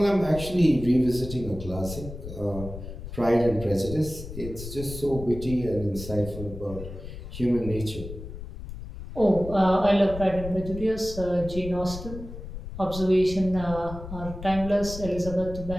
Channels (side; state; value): left; noise; rumble, 11 dB below the sound